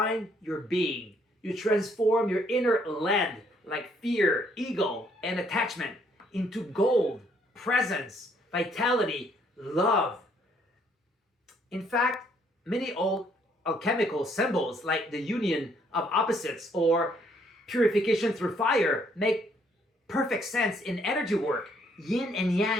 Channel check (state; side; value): normal; both; correlation 0.67